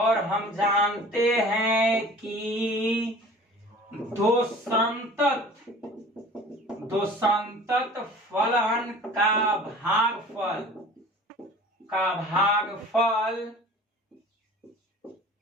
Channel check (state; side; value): normal; both; correlation 0.44